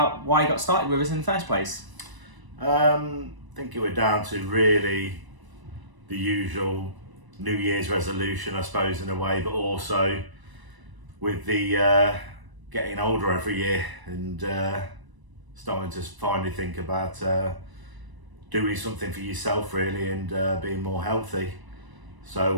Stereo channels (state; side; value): late; left; 1.0 ms